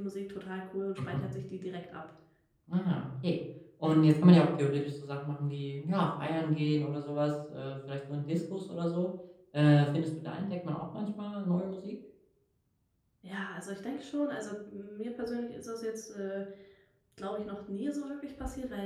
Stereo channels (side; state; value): both; identical; correlation 1.00